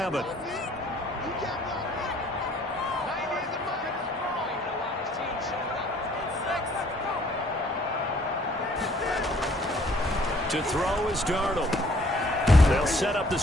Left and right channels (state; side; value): normal; both; correlation 0.59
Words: To throw is Darnold. They'll set up the